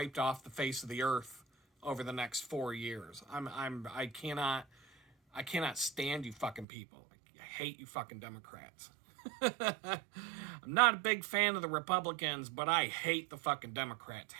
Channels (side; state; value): left; drops out; at 6.7 s